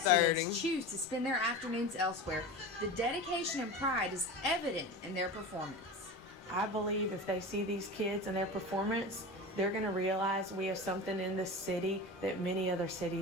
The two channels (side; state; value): both; normal; correlation 0.29